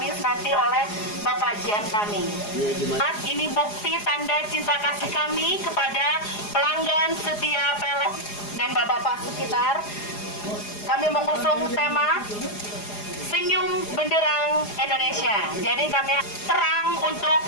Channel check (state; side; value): late; right; 4.8 ms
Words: nanti oleh Bapak GM kami. Ini bukti tanda cinta kasih kami kepada pelanggan setia PLN dan Bapak-Bapak sekitar. Kami mengusung tema Senyum Benderang Indonesia. Jadi kami terang untuk